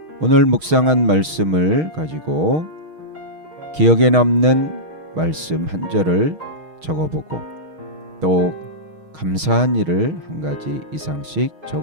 오늘 묵상한 말씀을 가지고 기억에 남는 말씀 한 절을 적어보고 또 감사한 일을 한 가지 이상씩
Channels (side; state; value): left; late; 6.4 ms